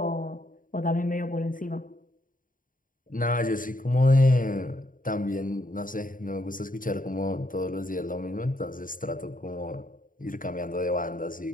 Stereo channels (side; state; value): right; late; 0.39 ms